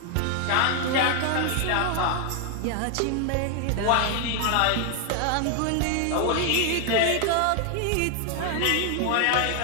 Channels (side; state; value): both; different; correlation 0.00